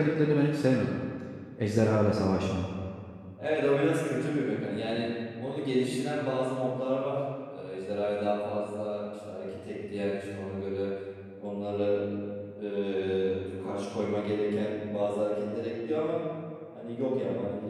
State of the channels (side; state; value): both; identical; correlation 1.00